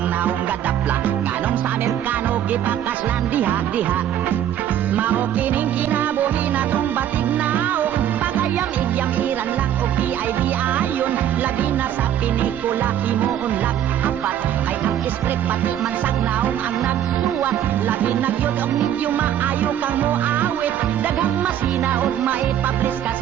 naong gadapla, kanong sa Amerikano gipakaslan diha-diha. Mao kining kinabuhi na tong batik naong, pagayam-igyam iran lang o PID ayon, labi na sa pinikula himuunlag apat, ay ang script pati man tagnaong ang nagsuwat, labi na gyud og medyo maayo kang moawit, daghang masina og maipablis ka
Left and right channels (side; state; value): left; quieter; 10.6 dB